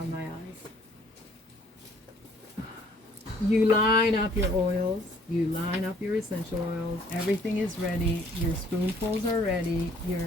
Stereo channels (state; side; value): normal; both; correlation 0.60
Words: my eyes. You line up your oils, you line up your essential oils, everything is ready, your spoonfuls are ready,